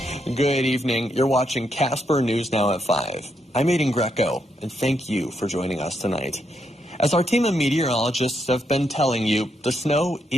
Good evening. You're watching Casper News Now at 5. I'm Aiden Greco, and thank you for joining us tonight. As our team of meteorologists have been telling you, the snow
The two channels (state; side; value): normal; both; correlation 0.79